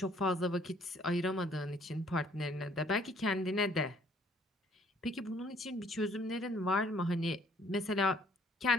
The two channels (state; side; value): normal; both; correlation 0.61